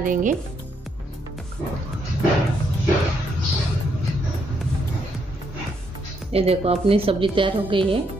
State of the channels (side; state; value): both; normal; correlation 0.75